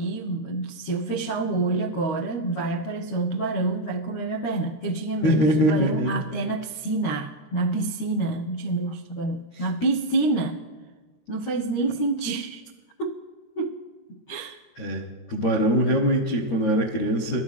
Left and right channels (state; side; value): late; right; 13 ms